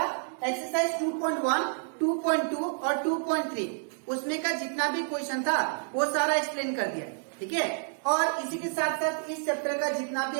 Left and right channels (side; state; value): left; silent; digital silence